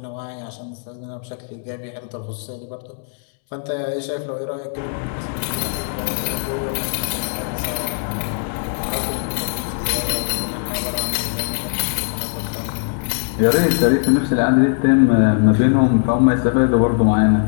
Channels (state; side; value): silent; right; 66 dB below the other